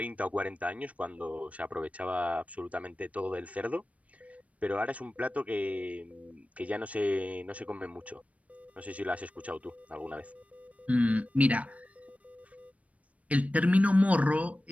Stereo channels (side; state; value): left; late; 0.067 ms